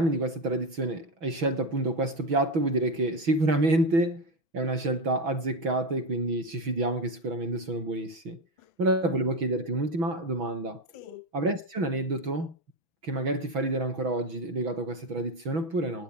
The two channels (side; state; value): left; late; 6.1 ms